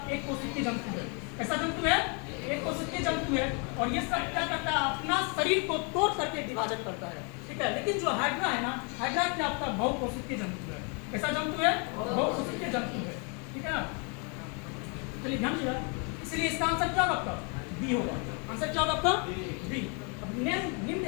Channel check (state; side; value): quieter; right; 35.5 dB